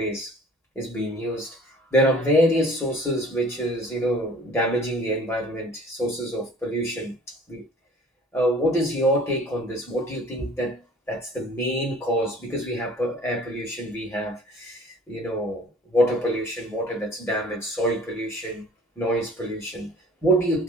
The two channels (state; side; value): normal; both; correlation 0.49